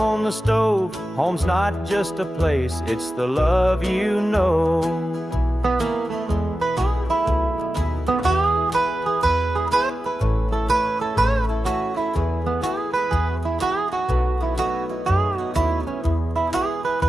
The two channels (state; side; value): normal; both; correlation 0.92